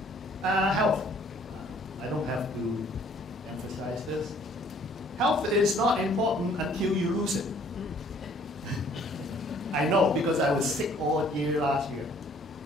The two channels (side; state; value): both; normal; correlation 0.58